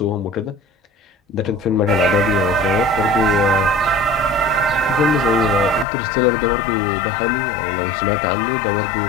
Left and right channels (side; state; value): right; drops out; at 5.9 s